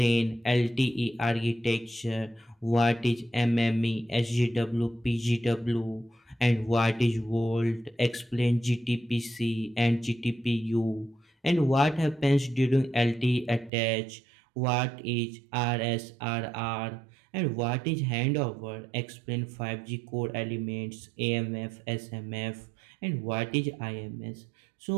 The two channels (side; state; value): left; drops out; at 13.7 s